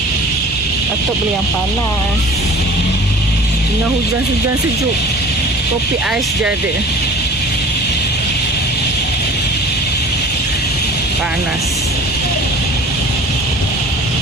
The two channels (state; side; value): normal; both; correlation 0.43